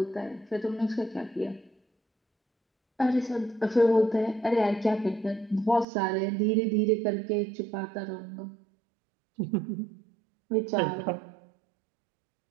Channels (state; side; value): drops out; left; at 5.9 s